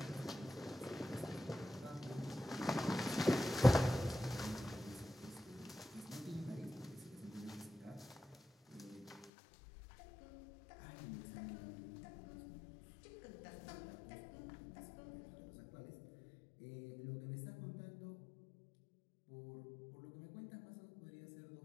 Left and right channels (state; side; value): drops out; right; at 9.3 s